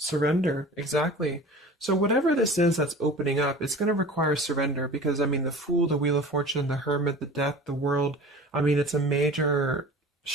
exactly. So whatever this is that's opening up, it's going to require surrender, because, I mean, the Fool, the Wheel of Fortune, the Hermit, the Death, the World, I mean, it's a major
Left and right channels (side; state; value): both; normal; correlation 0.40